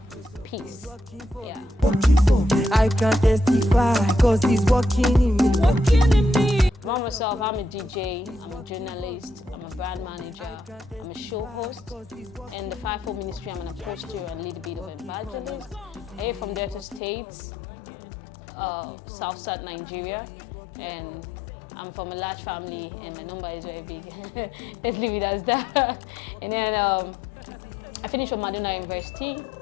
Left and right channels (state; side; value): drops out; right; at 17.0 s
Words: Peace. Yeah. I can testify, cause it's working in me. About myself, I'm a DJ, I'm a journalist, I'm a brand manager, I'm a show host. In the Fivefold Ministry, I'm an apostle and lead a bit of evangelist. I hail from Delta States, South Nigeria, and I'm from a large family, and the number is very big. Let's leave it as that. And then I finished from Madonna University,